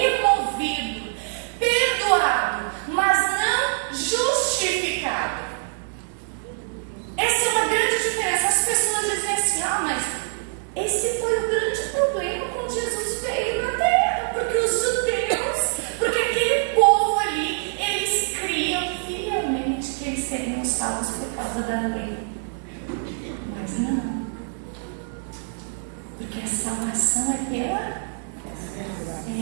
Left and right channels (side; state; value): left; silent; digital silence